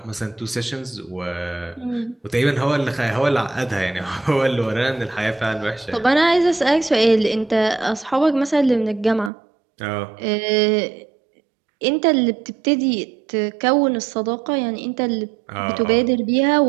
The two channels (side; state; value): left; drops out; at 9.3 s